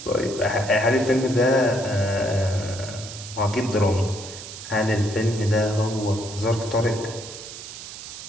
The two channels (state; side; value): noise; right; hiss, 12 dB below the sound